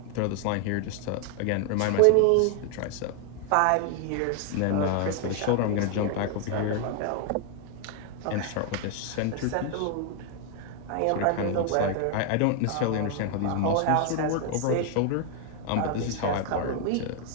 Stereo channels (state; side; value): different; both; correlation 0.01